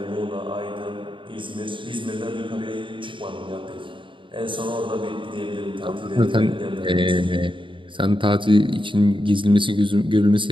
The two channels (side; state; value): left; late; 0.24 ms